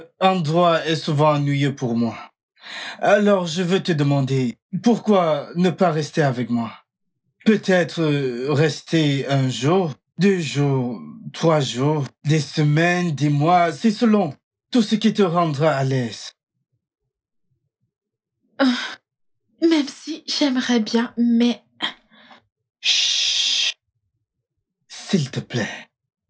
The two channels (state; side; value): identical; both; correlation 1.00